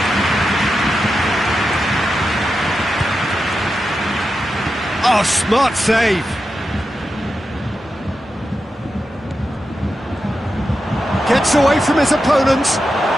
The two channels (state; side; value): normal; both; correlation 0.89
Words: Oh, smart save. Gets away from his opponent.